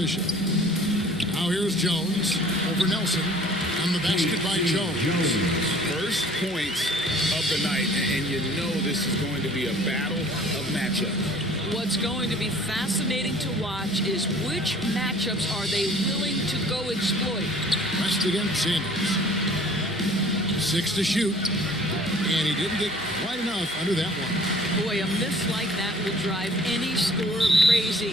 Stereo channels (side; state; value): right; noise; hum, 23 dB below the sound